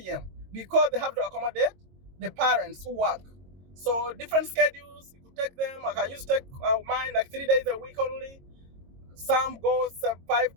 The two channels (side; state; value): left; late; 22 ms